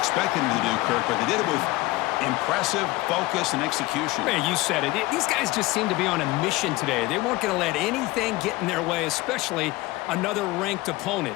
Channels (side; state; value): right; quieter; 19.9 dB